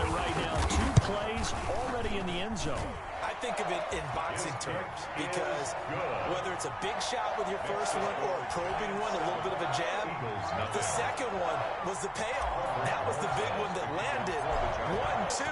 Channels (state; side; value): identical; both; correlation 1.00